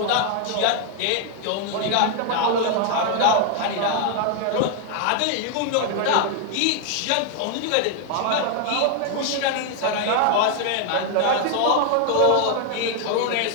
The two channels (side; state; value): both; different; correlation 0.00